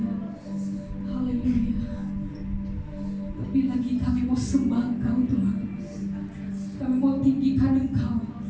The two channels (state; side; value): identical; both; correlation 1.00